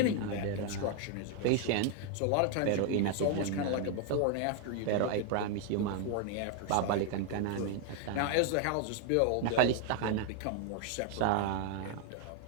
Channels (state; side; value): different; both; correlation 0.00